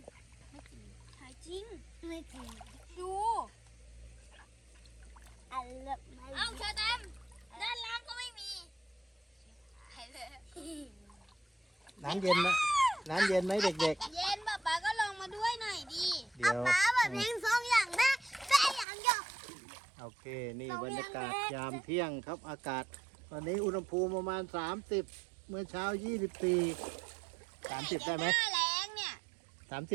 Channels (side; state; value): left; drops out; at 18.9 s